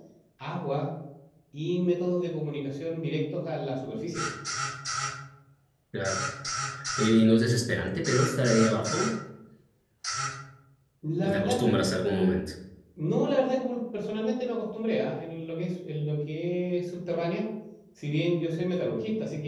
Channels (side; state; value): both; identical; correlation 1.00